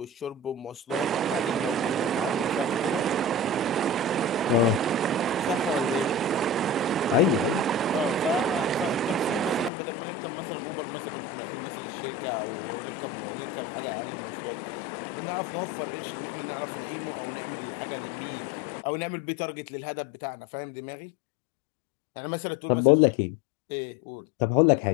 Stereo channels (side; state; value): right; drops out; at 9.7 s